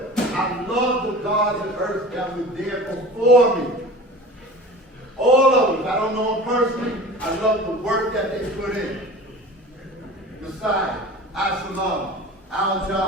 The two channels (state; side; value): normal; both; correlation 0.38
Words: I love the gods of earth that were there before me. All of them. I don't know them personally. I love the work that they put in. Messiah, Absalom,